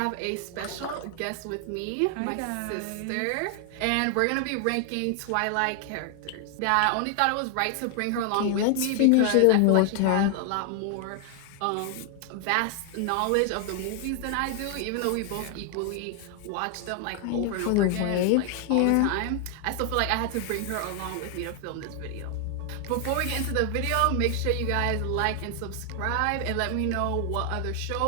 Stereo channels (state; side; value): different; both; correlation 0.00